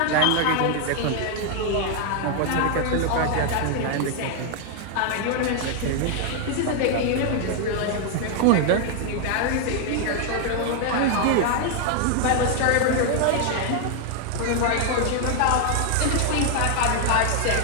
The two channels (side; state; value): both; different; correlation 0.00